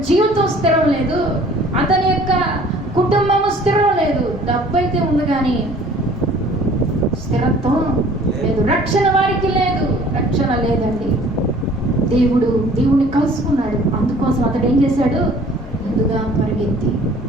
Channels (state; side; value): normal; both; correlation 0.52